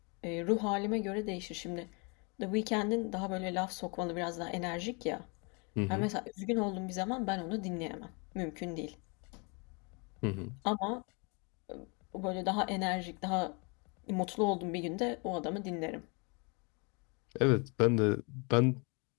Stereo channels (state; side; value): quieter; right; 32.3 dB